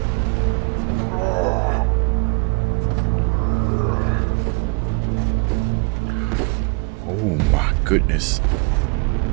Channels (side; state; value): left; quieter; 32.7 dB